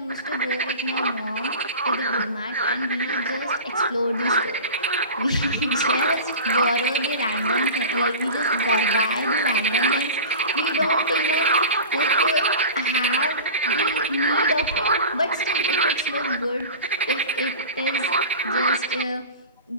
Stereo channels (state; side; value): inverted; both; correlation -0.33